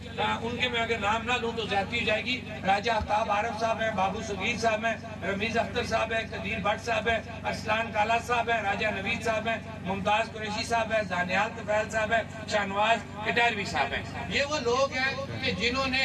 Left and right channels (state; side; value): identical; both; correlation 1.00